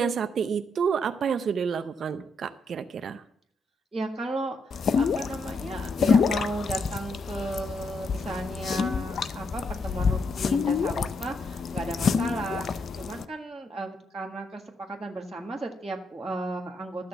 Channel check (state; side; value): normal; both; correlation 0.77